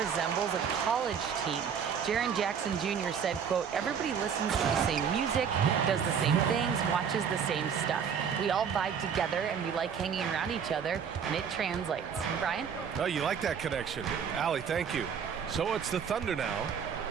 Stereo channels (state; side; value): quieter; left; 7.2 dB